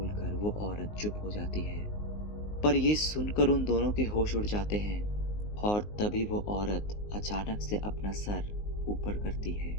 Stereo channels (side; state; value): right; late; 19 ms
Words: वो औरत चुप हो जाती है। पर ये सुनकर उन दोनों के होश उड़ जाते हैं और तभी वो औरत अचानक से अपना सर ऊपर करती है